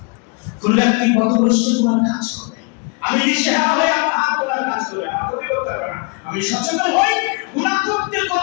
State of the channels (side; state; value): right; quieter; 32.3 dB